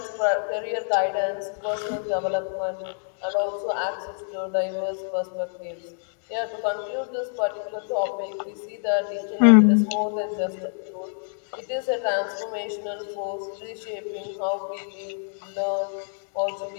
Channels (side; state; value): right; silent; digital silence